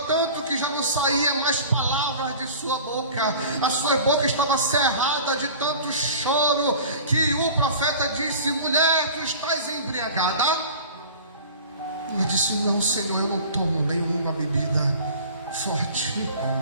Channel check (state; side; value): inverted; both; correlation -0.41